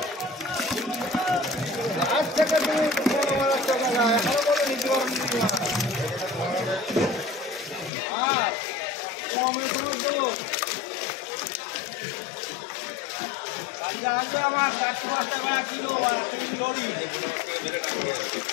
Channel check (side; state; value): right; drops out; at 7.9 s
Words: আমার 405 টাকা কিলো